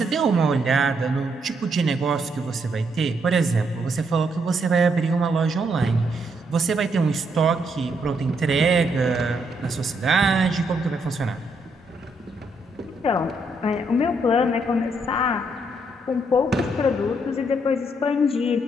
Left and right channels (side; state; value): both; normal; correlation 0.75